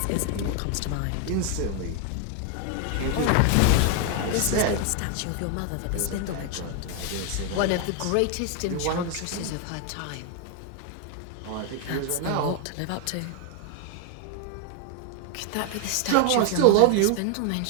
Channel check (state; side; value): different; both; correlation 0.00